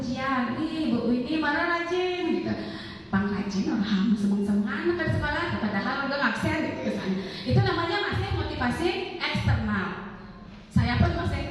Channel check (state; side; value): identical; both; correlation 1.00